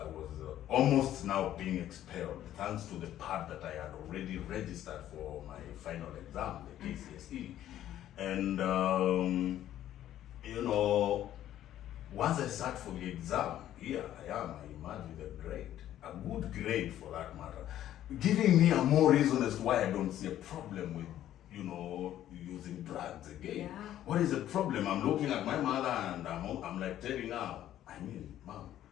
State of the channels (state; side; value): quieter; right; 12.2 dB